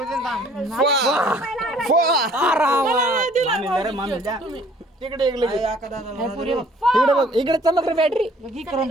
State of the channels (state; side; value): normal; both; correlation 0.57